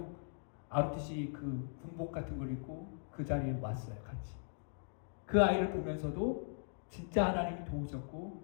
ROTC 그 군복 같은 걸 입고 그 자리에 왔어요. 같이. 그 아이를 보면서도 진짜 하나님이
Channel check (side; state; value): right; silent; digital silence